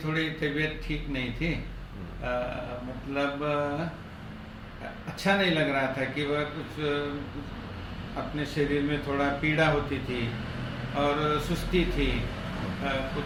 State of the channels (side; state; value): both; identical; correlation 1.00